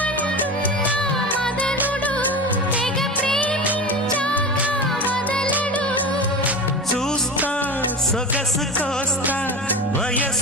మదనుడు తెగ ప్రేమించాక వదలడు చూస్తా సొగసు కోస్తా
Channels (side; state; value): both; normal; correlation 0.27